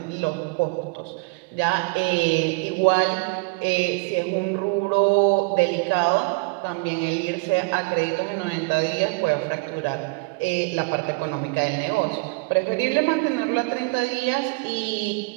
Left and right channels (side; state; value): left; quieter; 29.2 dB